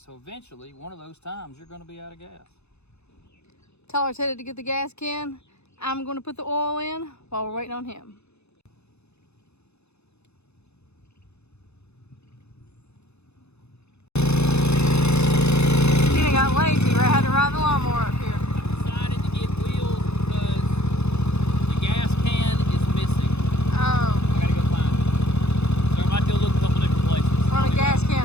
eventually, one of those times, you're going to be out of gas. Tyler's headed to get the gas can. I'm going to put the oil in while we're waiting on him. He got lazy, right? Had to ride the lawnmower up here. I decided to get wheels because the gas can is missing. Oh. I gotta go find it. So I might go look a couple different places. We're on a gas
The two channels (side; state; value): right; late; 0.80 ms